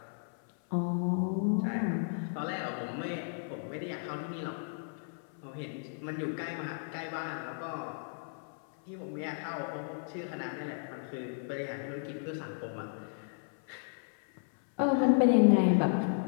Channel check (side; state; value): right; silent; 55 dB below the other